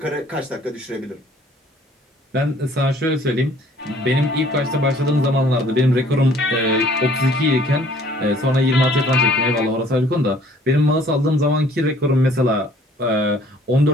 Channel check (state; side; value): normal; both; correlation 0.56